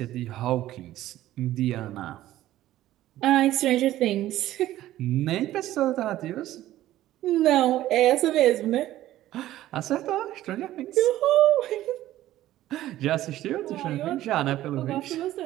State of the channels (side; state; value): left; quieter; 14.3 dB